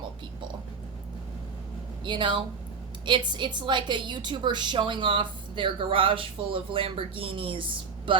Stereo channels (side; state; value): left; quieter; 5.3 dB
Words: people. It's like a YouTuber showing off their garage full of Lamborghinis,